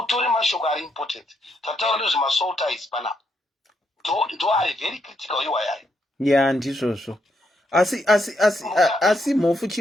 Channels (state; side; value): normal; both; correlation 0.78